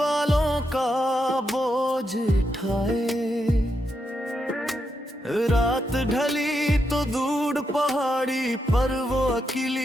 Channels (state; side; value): normal; both; correlation 0.83